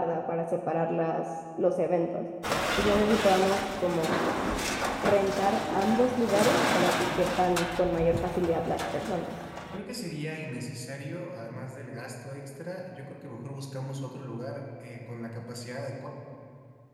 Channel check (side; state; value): both; identical; correlation 1.00